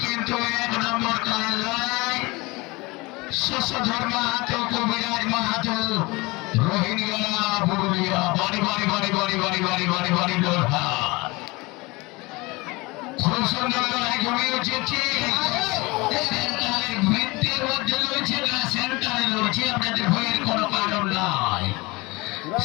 কিন্তু 1 নম্বর খেলার লড়াই শশধর মাহাতো, কবিরাজ মাহাতো, রোহিঙ্গা পুরুলিয়া। বাড়ি বাড়ি বাড়ি বাড়ি বাড়ি বাড়ি বাড়ি বাড়ি লড়াই, খুব সুন্দর লড়াই জমে উঠেছে। সেন্টারের বৃত্তের মধ্যে রয়েছে না, সেন্টারে রয়েছে, আপনাদের ভয়ের কোনো কারণ নাই।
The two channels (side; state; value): right; quieter; 23.9 dB